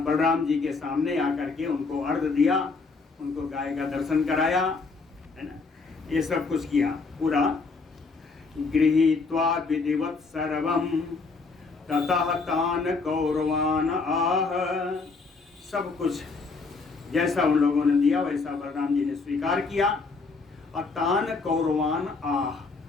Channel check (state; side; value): quieter; right; 4.2 dB